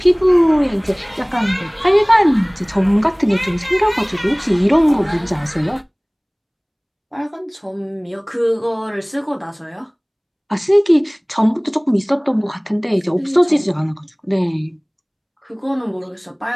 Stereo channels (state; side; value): identical; both; correlation 1.00